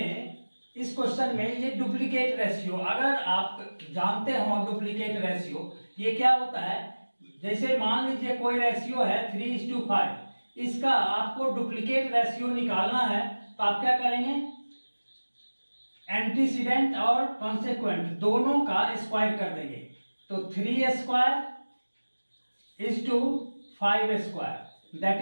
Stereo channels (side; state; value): both; inverted; correlation -1.00